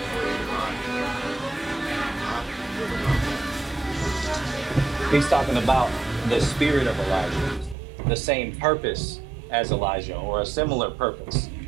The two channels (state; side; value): drops out; left; at 7.8 s